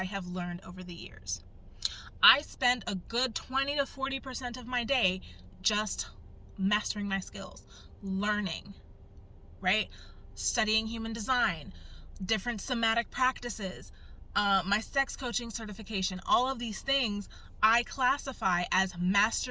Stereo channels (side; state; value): both; identical; correlation 1.00